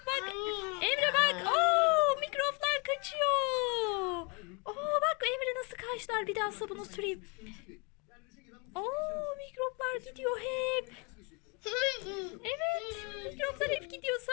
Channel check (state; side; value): quieter; right; 31.9 dB